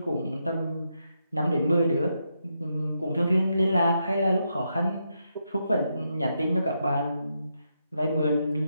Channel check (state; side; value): inverted; both; correlation -0.82